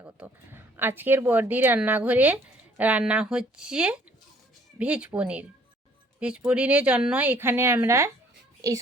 আজকের বড়দির রান্নাঘরে রান্না হচ্ছে ভেজ পনির। ভেজ পনিরের জন্য এখানে আমরা এই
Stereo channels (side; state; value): both; normal; correlation 0.59